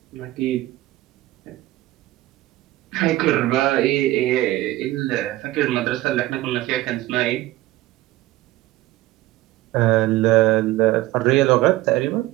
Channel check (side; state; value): left; quieter; 17.0 dB